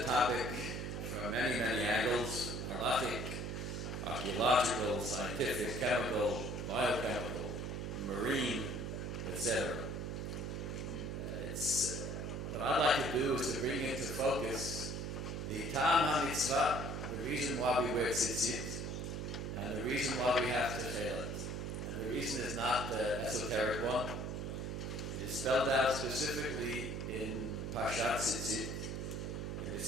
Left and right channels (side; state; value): right; noise; hum, 4 dB below the sound